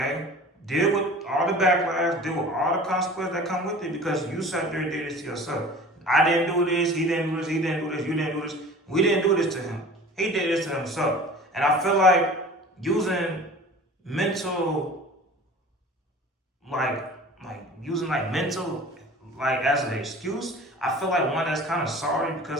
deal with all the backlash, deal with all the consequences that come with it because you sat there and did this to yourself. I didn't do this, he didn't do this, he didn't do this, you didn't do this. We didn't do this to him. He did this to himself. And I feel like using mental, using mental, as an excuse, I feel like one that's kind of sorry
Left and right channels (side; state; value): both; normal; correlation 0.42